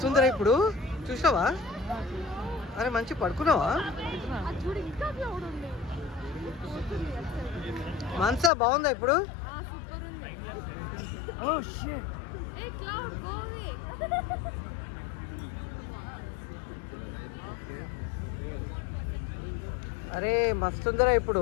ఉందిరా ఇప్పుడు, చూసావా? అరే మంచి పడుకున్నావా? మనసా బాగుందా ఇప్పుడు? అరే మస్తుందిరా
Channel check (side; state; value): right; drops out; at 8.5 s